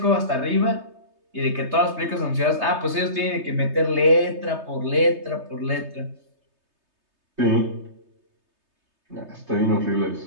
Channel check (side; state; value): left; late; 3.3 ms